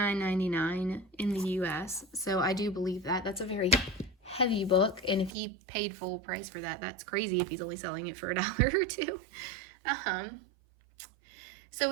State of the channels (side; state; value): left; drops out; at 5.3 s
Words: in the US. So I do believe that. That's a very heavy book, and if he paid full price for that, that's crazy if he's only selling it for $1 or $2. So